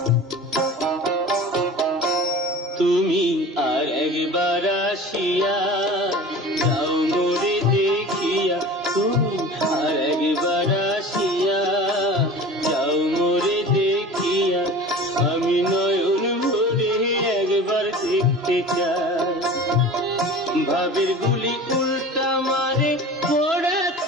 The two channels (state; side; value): normal; both; correlation 0.37